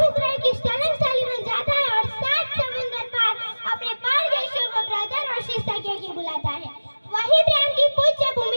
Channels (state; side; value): inverted; both; correlation -1.00